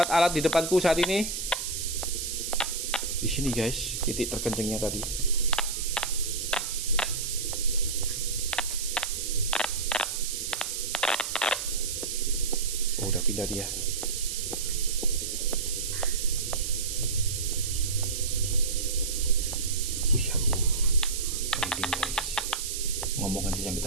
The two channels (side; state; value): right; noise; hiss, 4 dB below the sound